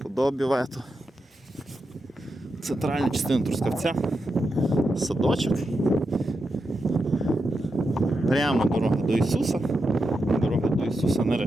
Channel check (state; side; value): normal; both; correlation 0.87